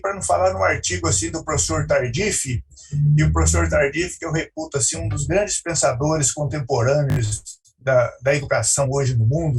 não falar num artigo assim do professor Tardif, e o professor Tardif, que eu reputo assim, um dos grandes pensadores contemporâneos da educação hoje no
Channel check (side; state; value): both; identical; correlation 1.00